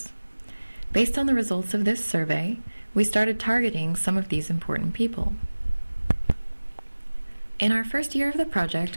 Based on the results of this survey, we started targeting some of these important people. In our first year of the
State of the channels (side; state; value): both; inverted; correlation -1.00